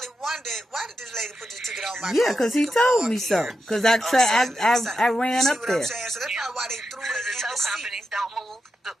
wondered, why did this lady put this ticket on my car? Yeah, because he told me so. Because I ran up there. So that's probably why they threw it in the tow seat. companies don't move.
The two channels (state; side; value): normal; both; correlation 0.88